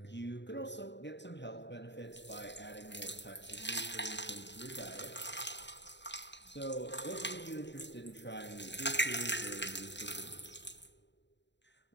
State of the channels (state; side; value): late; right; 0.52 ms